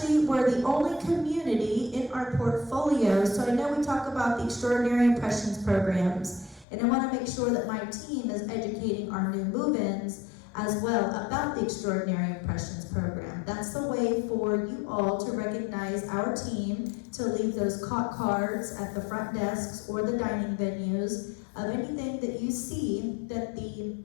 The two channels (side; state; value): right; drops out; at 6.7 s